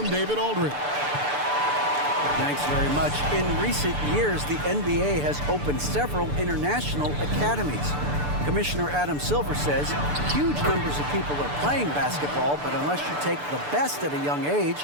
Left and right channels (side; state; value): left; late; 6.8 ms